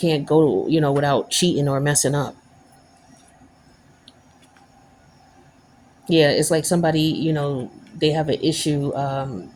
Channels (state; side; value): identical; both; correlation 1.00